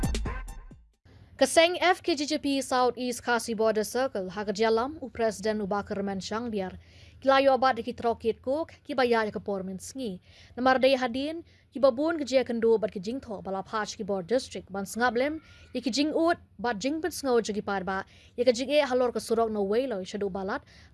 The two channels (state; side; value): identical; both; correlation 1.00